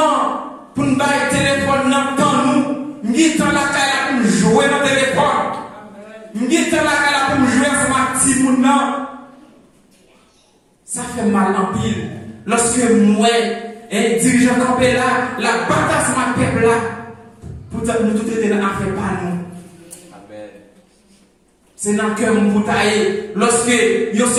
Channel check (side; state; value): both; identical; correlation 1.00